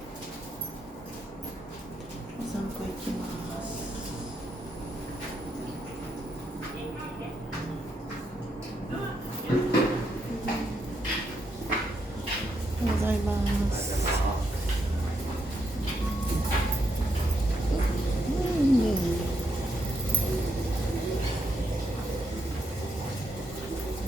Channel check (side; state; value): both; normal; correlation 0.79